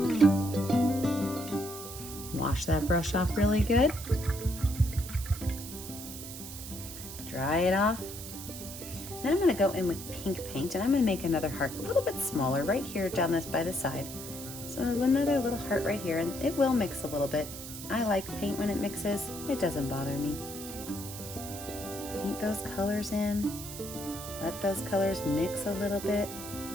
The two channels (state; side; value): noise; right; hiss, 11 dB below the sound